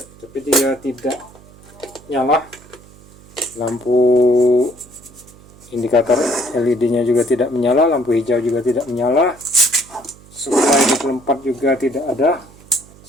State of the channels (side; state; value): right; noise; hum, 24 dB below the sound